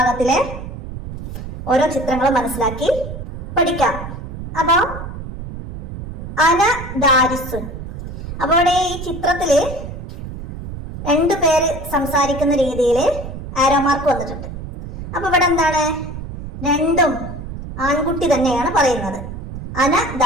ഓരോ ചിത്രങ്ങൾ മനസ്സിലാക്കി പഠിക്കാം. അപ്പോൾ അന ദാരിസുൻ. അപ്പോൾ ഇവിടെ ഈ ചിത്രത്തില് 2 പേര് സംസാരിക്കുന്ന രീതിയിൽ ആരോ മാർക്ക് വന്നിട്ടുണ്ട്. അപ്പൊ ഇവിടെ എന്താണ്? 2ഉം ആൺകുട്ടി തന്നെയാണ് പറയുന്നത്. അന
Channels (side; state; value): right; noise; rumble, 9 dB below the sound